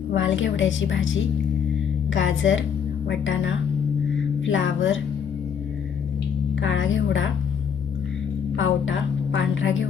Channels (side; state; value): right; quieter; 7.3 dB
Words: वाल घेवड्याची भाजी, गाजर, वाटाणा, फ्लावर, काळा घेवडा, पावटा, पांढरा